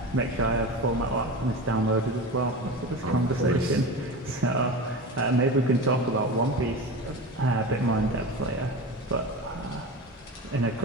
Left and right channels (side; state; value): both; normal; correlation 0.28